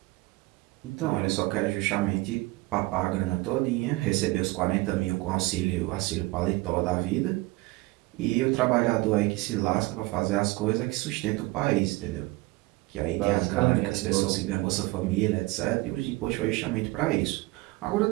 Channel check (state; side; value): quieter; left; 21.4 dB